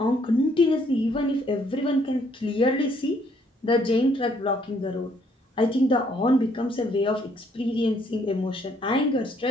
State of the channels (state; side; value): normal; both; correlation 0.67